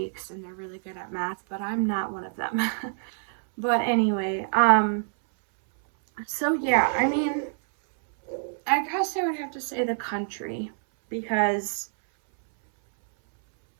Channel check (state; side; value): silent; left; 60 dB below the other